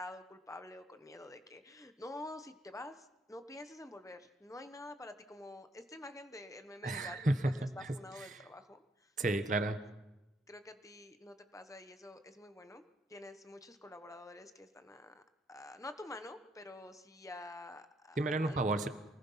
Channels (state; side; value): normal; both; correlation 0.72